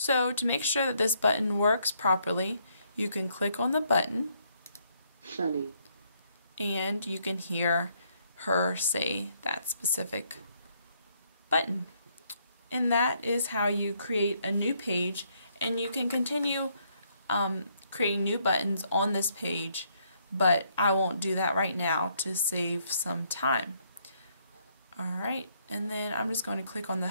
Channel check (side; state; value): both; inverted; correlation -0.71